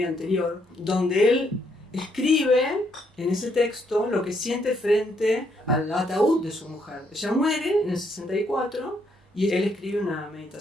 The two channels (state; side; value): normal; both; correlation 0.73